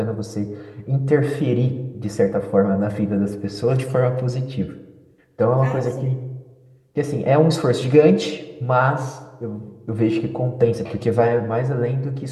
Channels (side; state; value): both; identical; correlation 1.00